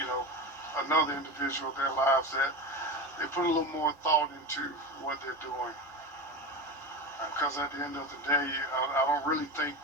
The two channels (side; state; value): both; normal; correlation 0.24